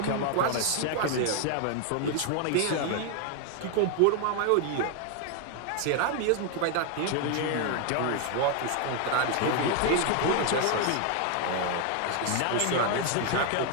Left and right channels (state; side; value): different; both; correlation 0.01